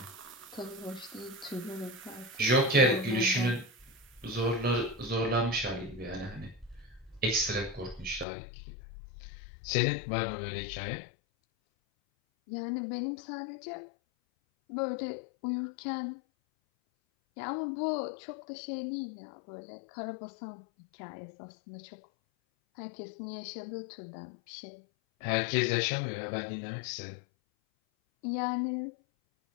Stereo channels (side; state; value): right; drops out; at 8.2 s